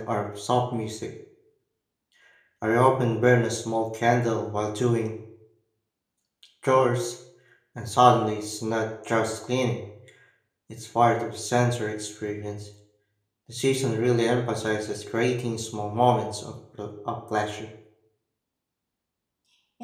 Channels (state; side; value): identical; both; correlation 1.00